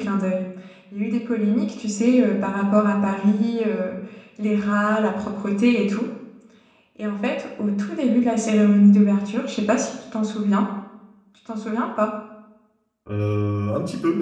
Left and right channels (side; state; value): both; identical; correlation 1.00